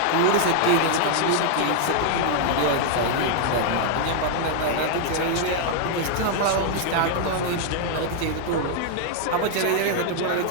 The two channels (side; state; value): both; different; correlation -0.01